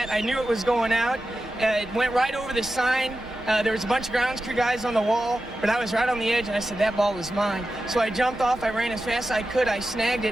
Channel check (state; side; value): normal; both; correlation 0.92